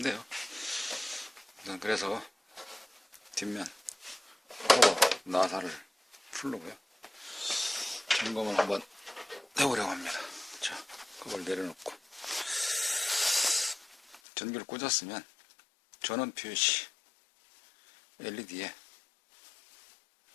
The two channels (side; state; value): right; drops out; at 14.2 s